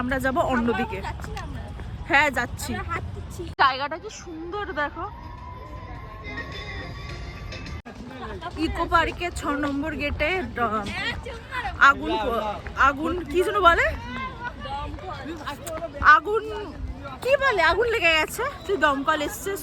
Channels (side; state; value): both; identical; correlation 1.00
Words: আমরা যাব অন্যদিকে। হ্যাঁ যাচ্ছি। জায়গাটা কি সুন্দর দেখো। ইকো পার্কে 6 নম্বর গেটে আগুন আগুন কি যেন বলে, আগুন কি বলে, আগুন লেগে গেছে, তুই দমকল এসছে।